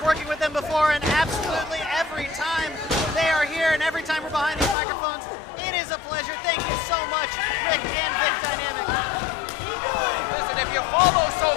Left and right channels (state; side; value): drops out; right; at 4.8 s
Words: working with them before, and absolutely every time they are here and every time we're behind these microphones, it is a pleasure. Thank you so much, Rick and Vic Dynamic. Listen, if you follow